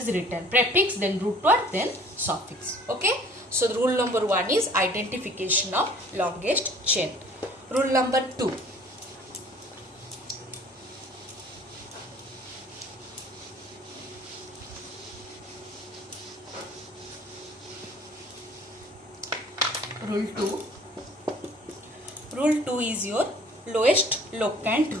written. Prefix, then root word, then suffix. Okay. So the rule number 1 is identification of longest chain. Rule number 2. Rule 2. Rule 2 is your lowest locant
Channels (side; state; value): both; normal; correlation 0.52